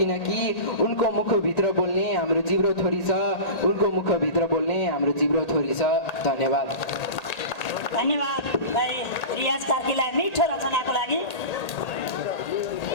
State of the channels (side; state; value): right; late; 1.8 ms